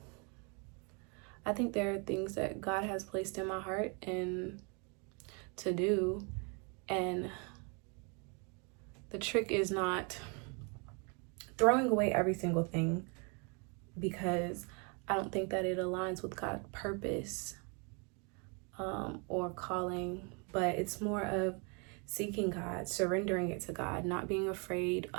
I think there are things that God has placed in my heart and to do. And the trick is not throwing away every single thing, because I don't think that it aligns with God's purpose or calling, but it's more of seeking God, surrendering it to God, not being afraid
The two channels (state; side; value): quieter; left; 34.5 dB